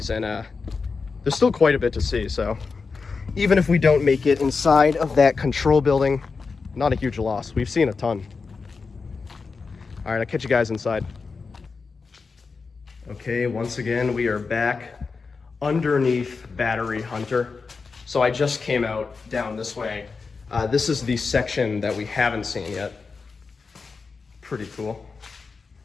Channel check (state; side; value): quieter; right; 4.7 dB